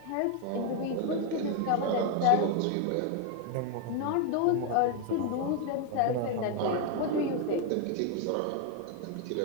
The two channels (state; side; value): different; both; correlation 0.01